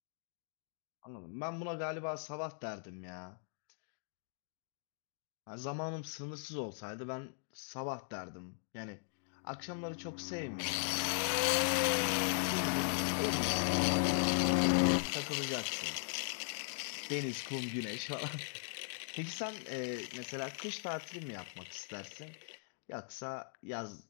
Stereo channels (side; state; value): right; silent; digital silence